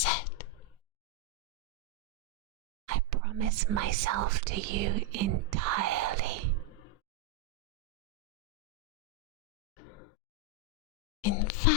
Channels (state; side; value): normal; both; correlation 0.02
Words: I promise myself to you entirely. In